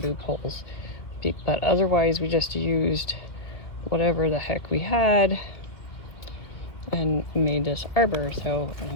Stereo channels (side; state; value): right; late; 2.2 ms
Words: poles, but otherwise we just used whatever the heck we had and made this arbor. So